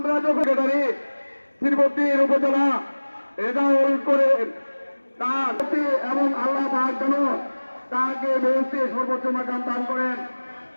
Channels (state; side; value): inverted; both; correlation -1.00